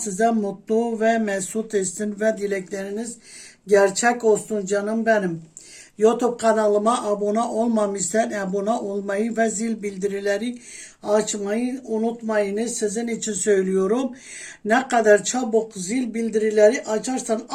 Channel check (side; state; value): both; identical; correlation 1.00